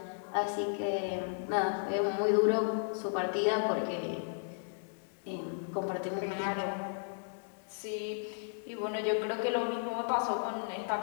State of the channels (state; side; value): silent; right; digital silence